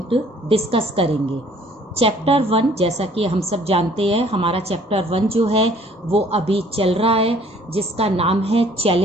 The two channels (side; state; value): both; normal; correlation 0.57